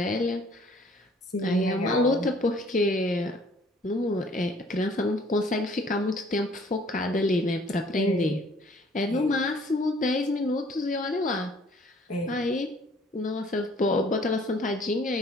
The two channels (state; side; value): normal; both; correlation 0.57